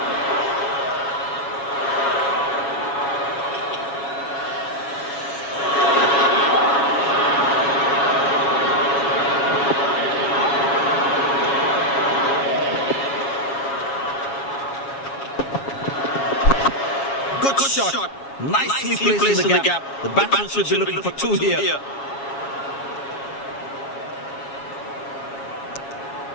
Good shot. Nicely placed in the gap. The batsman should be looking for two here.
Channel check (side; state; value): right; late; 7.3 ms